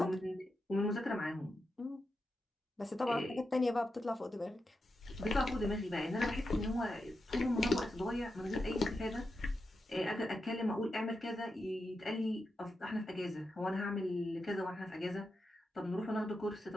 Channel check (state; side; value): normal; both; correlation 0.88